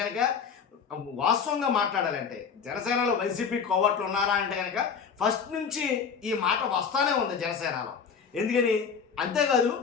కనుక, వాస్తవంగా మాట్లాడాలంటే జనసేనలో వైసీపీ కోవట్లు ఉన్నారా అంటే కనుక ఫస్ట్ నుంచి ఈ మాట వస్తానే ఉంది జనసేనలో. ఎందుకని? అంతేకాదు,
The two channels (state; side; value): quieter; right; 6.3 dB